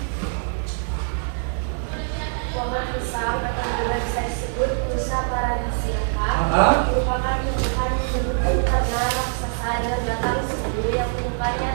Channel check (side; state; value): left; silent; 63 dB below the other